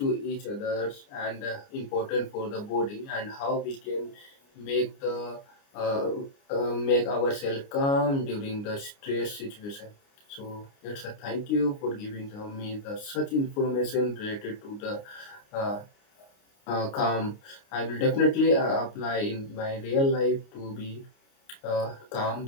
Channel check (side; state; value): right; late; 29 ms